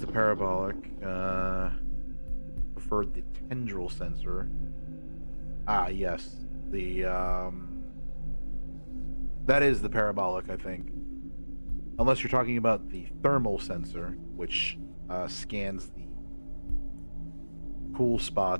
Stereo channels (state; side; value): inverted; both; correlation -1.00